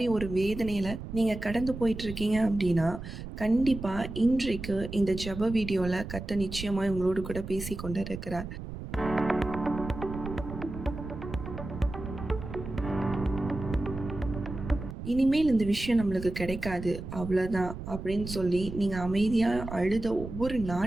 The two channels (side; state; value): right; noise; rumble, 9 dB below the sound